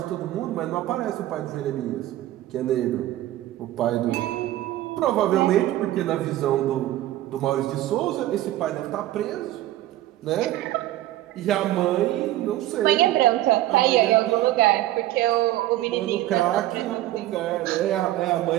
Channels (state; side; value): quieter; left; 14.8 dB